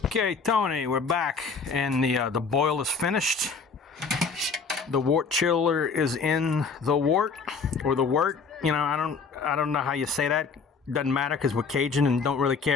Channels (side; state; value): right; quieter; 5.0 dB